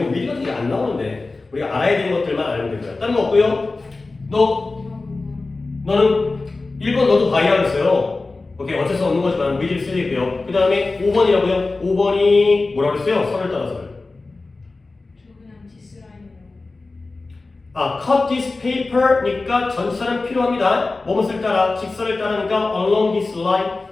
미리 같은 게 안 나오는데 우리가 알아야 되는 것들만 알면 됩니다. 다른 거 없고요. 너는 1번 너도 바이라고 했어요. 오케이, 어쩔 수 없는 거지만 위를 쓰이고요. 그 다음에 5번이라고요. 5번이 뭐라고 했어요? 선을 따라서요. cut this paper니까 전치사는 필요합니다. 뭐뭇을 따라, 직선을 따르니까 along this line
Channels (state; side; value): quieter; right; 3.5 dB